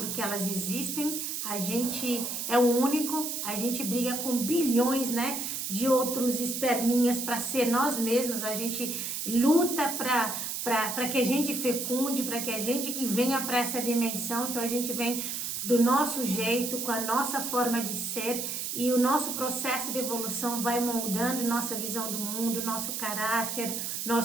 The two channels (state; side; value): noise; right; hiss, 3 dB below the sound